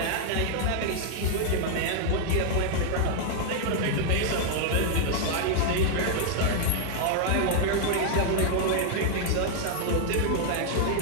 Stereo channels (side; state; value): both; different; correlation 0.00